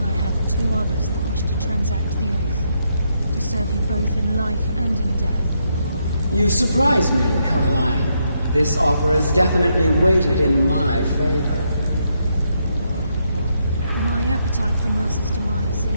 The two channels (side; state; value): both; inverted; correlation -0.78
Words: have two others that wish to transact the oath, to serve you both in life and in death. You surprise me, Carlia. This offer is definitely weighted in my favor. My appetite for Mercer's demise